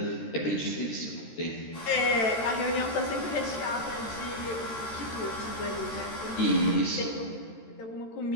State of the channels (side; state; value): right; late; 13 ms